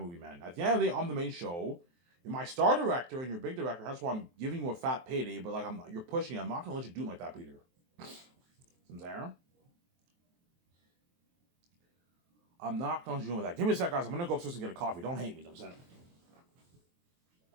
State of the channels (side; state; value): left; late; 23 ms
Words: man. At the end of the day, I'm the main show. You're my star director and you're a big director. That's why I'm giving you a fat payday. But like, you're pushing it. I'm not gonna let you do it like that, Peter. See what I'm saying? I'm not gonna let you do it like that. Give me a sec, guys. I'm gonna go upstairs and get a coffee. Don't hate me. You know what I'm saying?